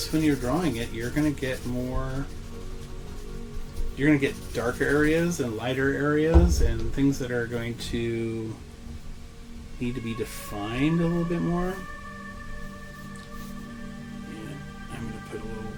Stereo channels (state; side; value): identical; both; correlation 1.00